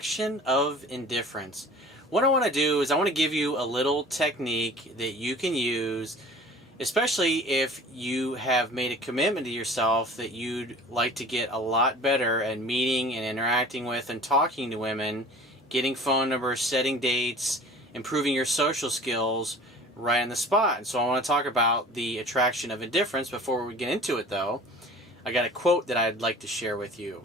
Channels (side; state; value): both; normal; correlation 0.45